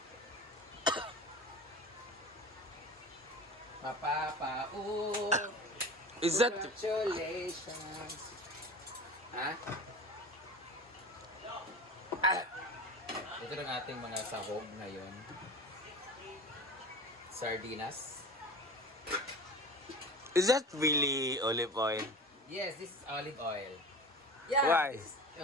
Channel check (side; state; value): both; normal; correlation 0.34